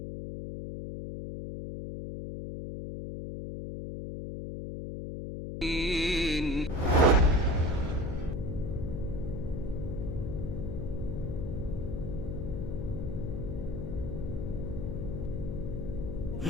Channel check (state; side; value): noise; left; hum, 5 dB below the sound